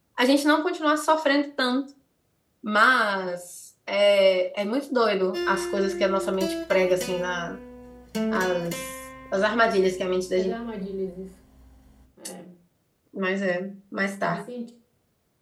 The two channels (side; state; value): both; identical; correlation 1.00